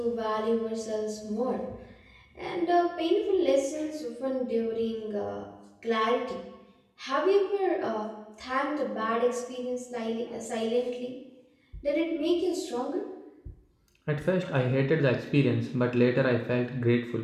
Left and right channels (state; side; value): identical; both; correlation 1.00